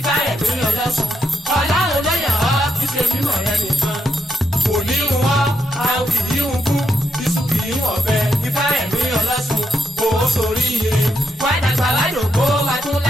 Olosun. Ọlọ́run ló yàn ọ́ kí ṣe mímọ̀ rẹ nìkan. Kò ní ń wọ́, a kì í ń kú. Iṣu kì í wọ̀ bẹ́ẹ̀. Ifaremi Olosun. Kò ó sórí ire. Wá dàgbà wá dògbó wá tún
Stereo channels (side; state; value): both; normal; correlation 0.81